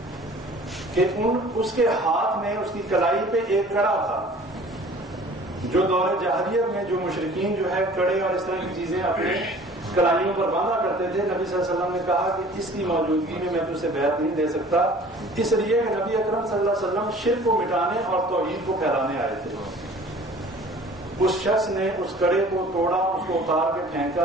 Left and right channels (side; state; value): both; normal; correlation 0.48